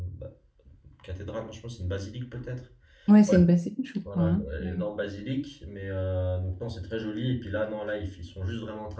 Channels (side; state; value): both; identical; correlation 1.00